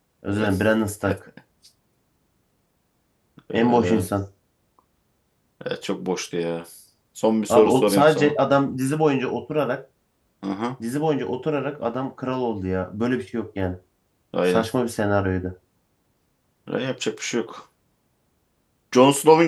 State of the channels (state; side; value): identical; both; correlation 1.00